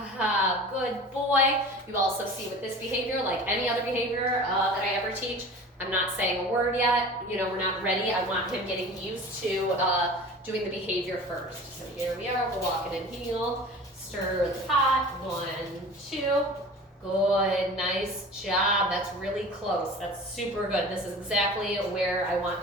Good boy. You also see with this behavior, like any other behavior that I ever teach, I'm not saying a word yet. You know, we're not ready. I want him getting used to doing the behavior first. So here we are. We're walking in heel. Stir the pot. 1, 2. Good. Nice job. That's really close. That's super good. This is exactly where I want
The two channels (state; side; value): normal; both; correlation 0.39